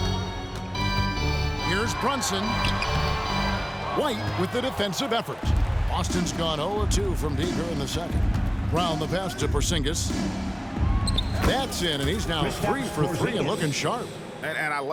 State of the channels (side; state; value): both; identical; correlation 1.00